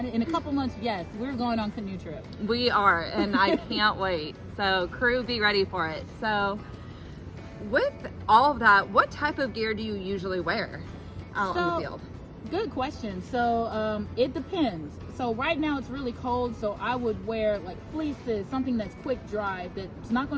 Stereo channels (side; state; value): both; identical; correlation 1.00